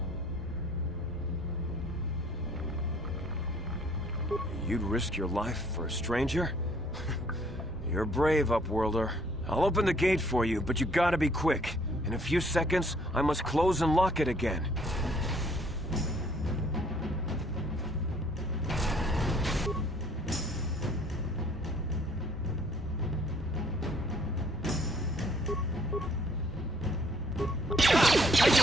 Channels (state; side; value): normal; both; correlation 0.61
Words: You'd risk your life for a stranger? You're brave, Upworlder. I'll open the gate for you, but you gotta be quick. In a few seconds, I must close and lock it again.